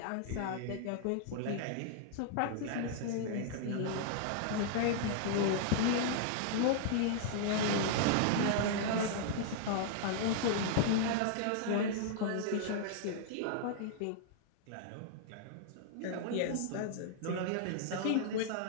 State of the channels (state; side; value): different; both; correlation -0.01